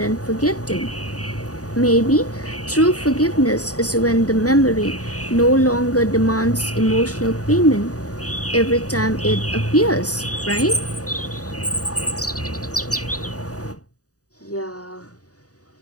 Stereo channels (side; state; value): right; late; 0.67 ms